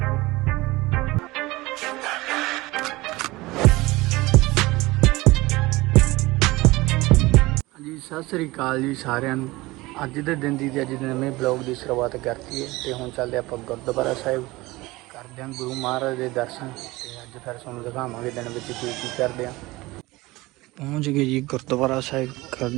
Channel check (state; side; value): quieter; left; 20.7 dB